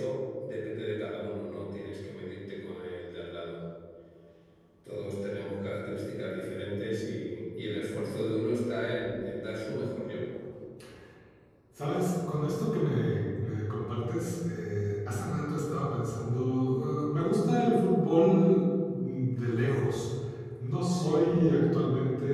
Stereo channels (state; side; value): identical; both; correlation 1.00